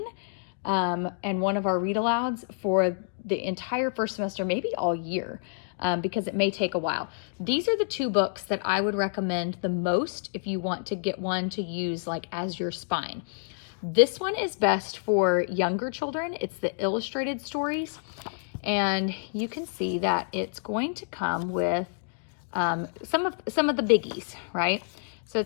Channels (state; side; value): silent; right; digital silence